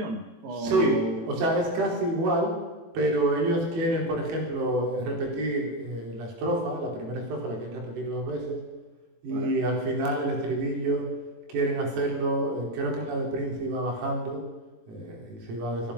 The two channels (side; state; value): left; late; 18 ms